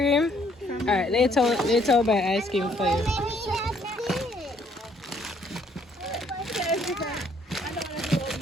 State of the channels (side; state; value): both; normal; correlation 0.65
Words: Alright, later I'll buy ice cream for you.